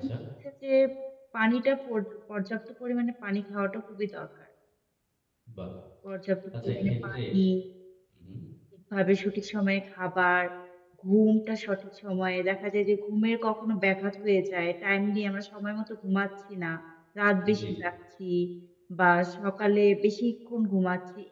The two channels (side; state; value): both; identical; correlation 1.00